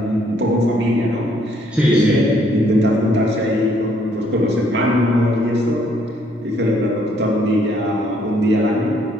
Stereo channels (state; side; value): normal; both; correlation 0.67